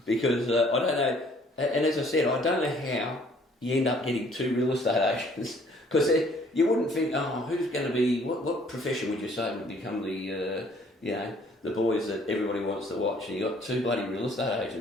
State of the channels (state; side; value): normal; both; correlation 0.59